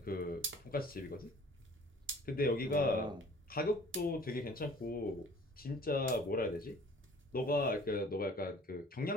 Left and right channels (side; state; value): both; normal; correlation 0.50